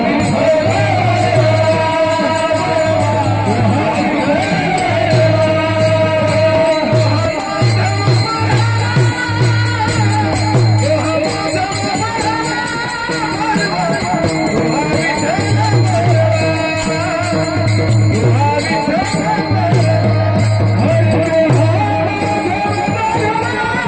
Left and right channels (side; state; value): both; identical; correlation 1.00